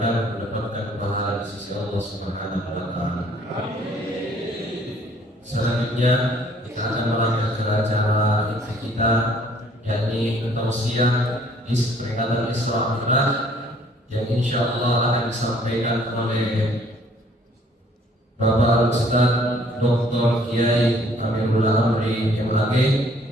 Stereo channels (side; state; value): both; normal; correlation 0.59